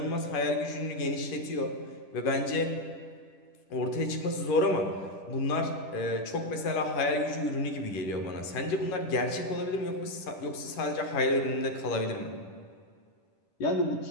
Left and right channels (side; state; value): right; late; 10 ms